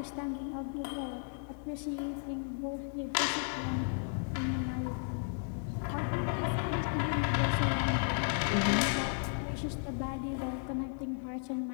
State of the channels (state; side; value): silent; right; 55 dB below the other